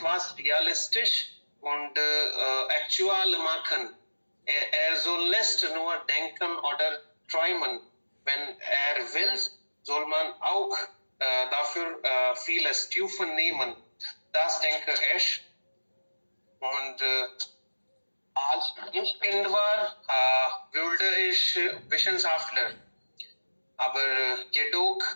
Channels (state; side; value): inverted; both; correlation -1.00